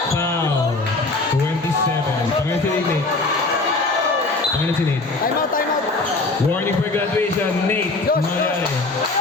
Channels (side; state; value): right; quieter; 3.3 dB